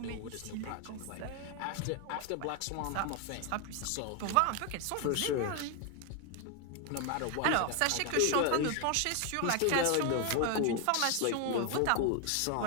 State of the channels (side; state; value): both; different; correlation 0.01